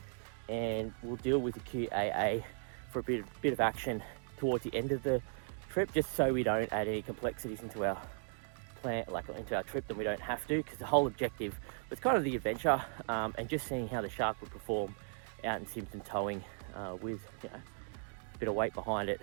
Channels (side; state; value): left; silent; 53 dB below the other